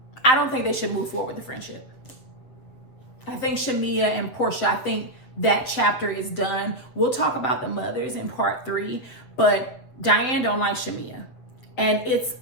should move forward with the friendship. I think Shamea and Porsha, I think that chapter is done. We'll talk about the mothers in part 3, but Diane don't like Shamea. And it's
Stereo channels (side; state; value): right; late; 7.9 ms